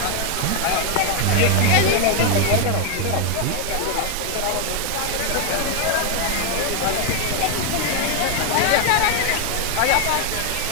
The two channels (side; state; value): both; different; correlation 0.00